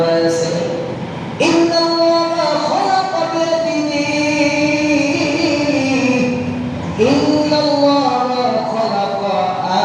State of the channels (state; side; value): identical; both; correlation 1.00